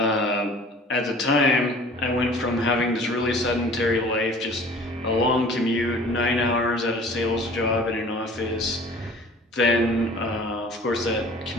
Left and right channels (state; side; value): normal; both; correlation 0.47